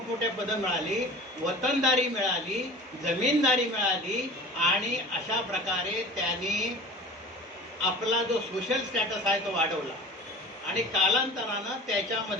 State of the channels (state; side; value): normal; both; correlation 0.39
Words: पदं मिळाली, वतनदारी मिळाली, जमीनदारी मिळाली. आणि अशा प्रकारे त्यांनी आपला जो सोशल स्टॅटस आहे तो वाढवला. आणि कालांतरानं